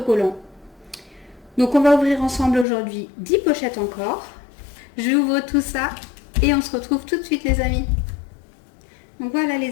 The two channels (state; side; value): drops out; right; at 2.7 s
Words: Donc on va ouvrir ensemble aujourd'hui 10 pochettes encore. J'ouvre tout ça et on se retrouve tout de suite les amis. Donc voilà